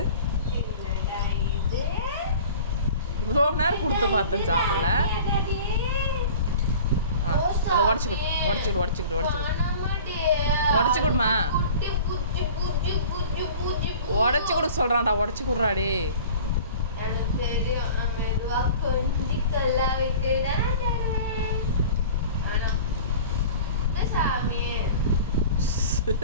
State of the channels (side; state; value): both; inverted; correlation -0.42